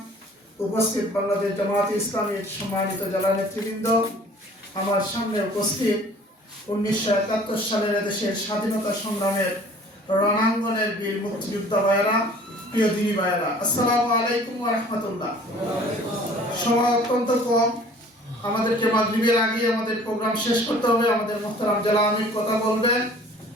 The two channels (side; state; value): both; normal; correlation 0.50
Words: উপস্থিত বাংলাদেশ জামাত ইসলামীর সম্মানিত জেলা নেতৃবৃন্দ, আমার সামনে উপস্থিত 1971 সালের দেশের স্বাধীনতা সংগ্রামের রণাঙ্গনের বীর মুক্তিযোদ্ধা ভাইয়েরা, প্রিয় দিনী ভাইয়েরা, আসসালামু আলাইকুম ওয়া রাহমাতুল্লাহ। সময় অত্যন্ত কম, আমাদেরকে মাগরিবের আগে আমাদের প্রোগ্রাম শেষ করতে হবে। আমাদের মুহতারাম জেলা আমির কথা বলবেন,